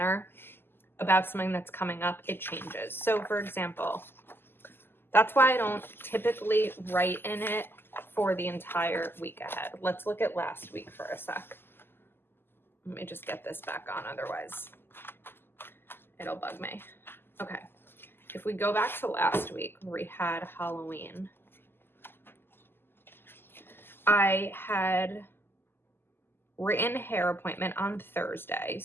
about something that's coming up, it changes. So for example, that's why I don't typically write in it for the entire week ahead. Let's look at last week for a sec. Let me just get this back on, otherwise it'll bug me. Okay. If we go back to last week, where we had Halloween, I had written hair appointment on Thursday.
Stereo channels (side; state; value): right; late; 0.11 ms